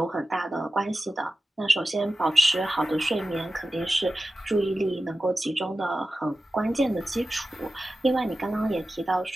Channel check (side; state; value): both; normal; correlation 0.94